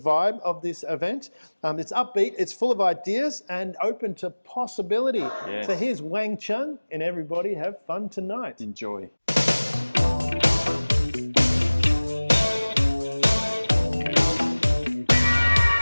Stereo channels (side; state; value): both; inverted; correlation -1.00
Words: of this event. It's upbeat, it's full of ideas and open to possibility. So here's Wang Chung and everybody have fun tonight. Enjoy.